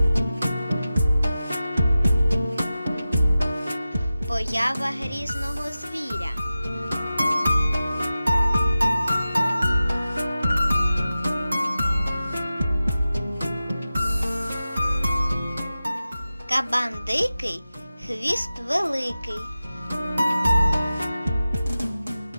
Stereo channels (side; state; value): both; inverted; correlation -0.94